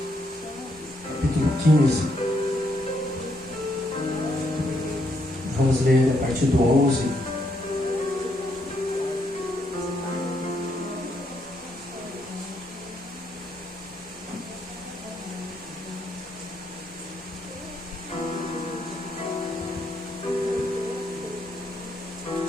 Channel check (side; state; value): both; normal; correlation 0.76